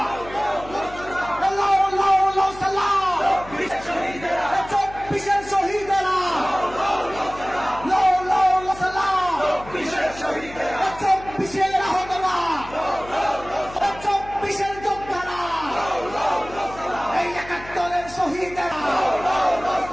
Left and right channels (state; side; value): noise; left; hum, 17 dB below the sound